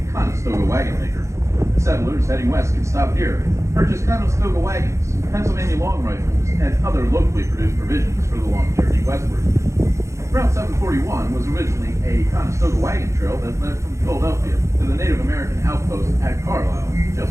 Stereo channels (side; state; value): left; late; 0.14 ms